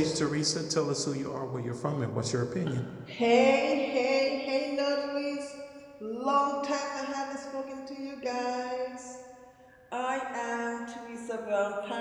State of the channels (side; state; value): both; identical; correlation 1.00